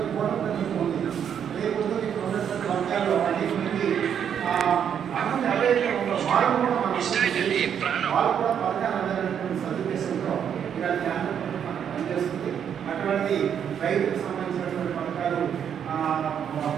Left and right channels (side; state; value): left; quieter; 8.4 dB